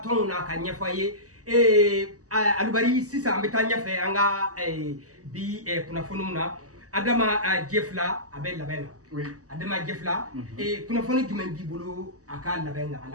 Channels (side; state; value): left; late; 0.66 ms